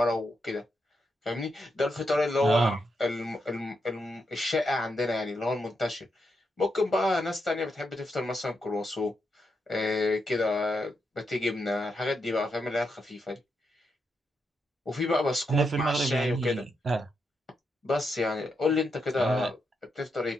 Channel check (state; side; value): normal; both; correlation 0.83